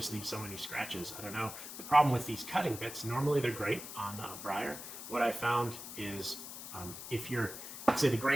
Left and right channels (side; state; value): left; noise; hiss, 10 dB below the sound